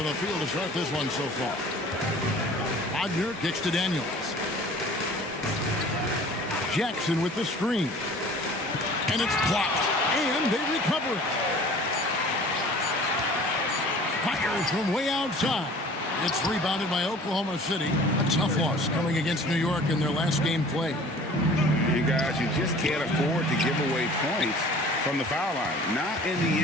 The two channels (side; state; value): both; normal; correlation 0.46